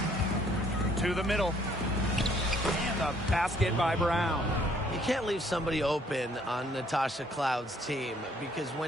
To the middle. And the basket by Brown. You can't leave somebody open on Natasha Cloud's team, because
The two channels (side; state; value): both; normal; correlation 0.63